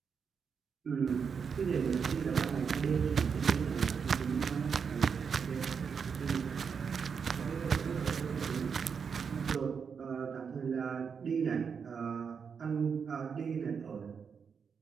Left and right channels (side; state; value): left; quieter; 6.3 dB